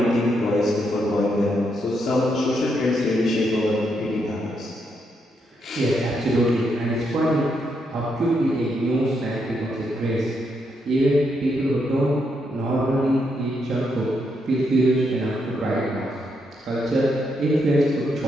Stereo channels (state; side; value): normal; both; correlation 0.79